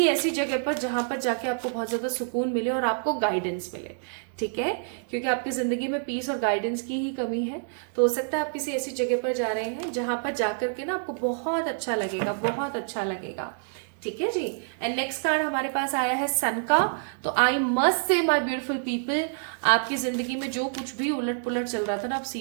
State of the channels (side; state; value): left; silent; digital silence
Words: ऐसी जगह पर जहां पर जाके आपको बहुत ज्यादा सुकून मिले और आपको गाइडेंस मिले, ठीक है, क्योंकि आपकी जिंदगी में पीस और गाइडेंस की ही कमी है। तो हो सकता है आप किसी ऐसी जगह पर जा रहे हैं जहां पर जाकर के ना आपको बहुत अच्छा लगेगा, बहुत अच्छा लगेगा, ठीक है जी। एंड नेक्स्ट कार्ड हमारे पास आया है सन का। तो आई मस्ट से माय ब्यूटीफुल पीपल, आपकी जिंदगी में जो कुछ भी उलट पुलट चल रहा था ना, आप